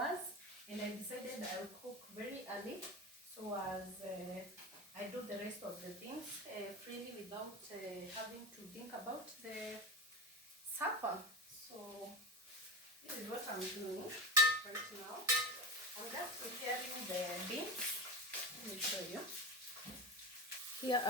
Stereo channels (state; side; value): normal; both; correlation 0.24